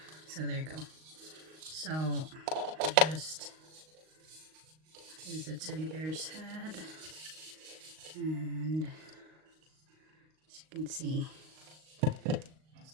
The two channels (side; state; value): left; late; 38 ms